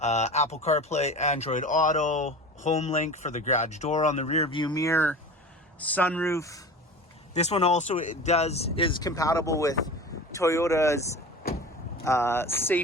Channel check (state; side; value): normal; both; correlation 0.34